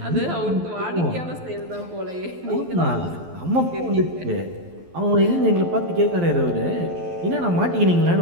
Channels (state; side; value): late; left; 12 ms